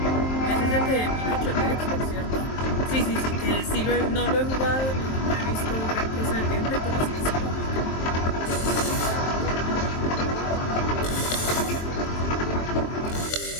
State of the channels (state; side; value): late; right; 23 ms